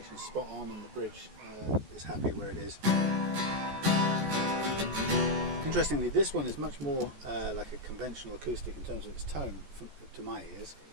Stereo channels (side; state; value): left; late; 14 ms